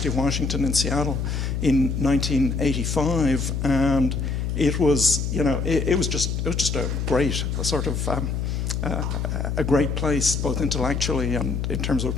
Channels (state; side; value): noise; left; hum, 1 dB below the sound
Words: of Washington in Seattle in 1985, and it was, you know, it was just a great sort of a great place, both intellectually and in terms of a